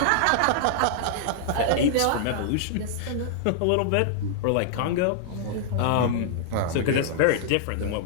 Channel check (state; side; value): different; both; correlation -0.01